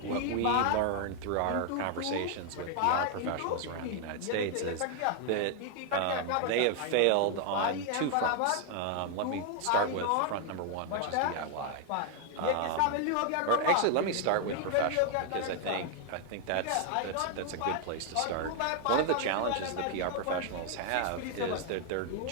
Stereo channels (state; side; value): different; both; correlation 0.00